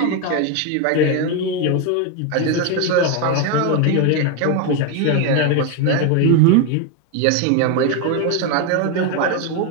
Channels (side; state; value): both; different; correlation 0.02